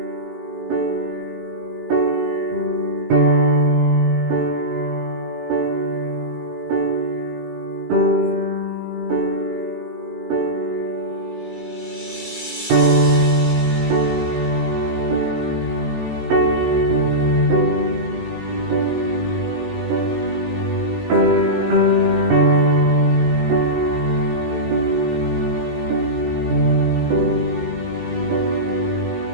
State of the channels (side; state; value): left; late; 18 ms